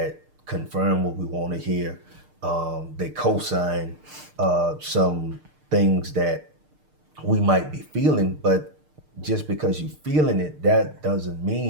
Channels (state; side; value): late; left; 6.6 ms